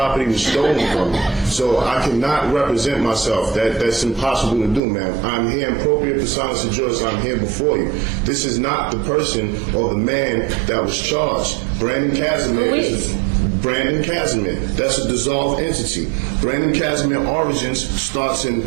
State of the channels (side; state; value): left; drops out; at 4.8 s